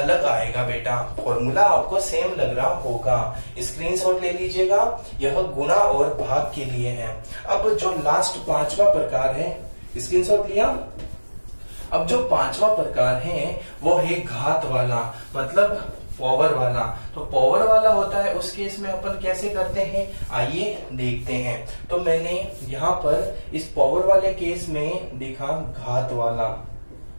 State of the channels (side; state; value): both; inverted; correlation -1.00